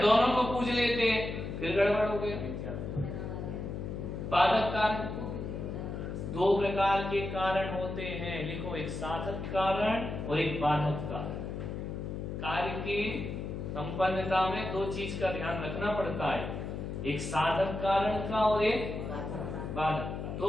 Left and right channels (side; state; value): left; noise; hum, 5 dB below the sound